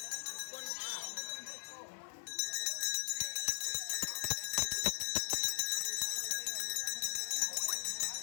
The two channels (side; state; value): right; silent; 52 dB below the other